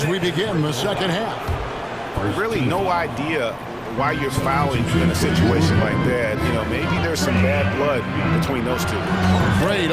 we begin the second half. Really no idea why you're fouling in a situation like that. You know, maybe there's some bad blood between those two. Great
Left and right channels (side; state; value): both; identical; correlation 1.00